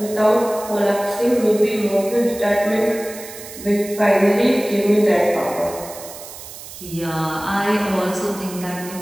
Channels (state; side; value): noise; right; hiss, 14 dB below the sound